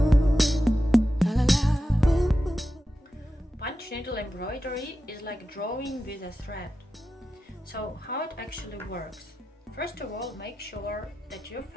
Punch needle embroidery is like drawing with a thread. So how it actually works? First of all, make sure that your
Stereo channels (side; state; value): both; normal; correlation 0.91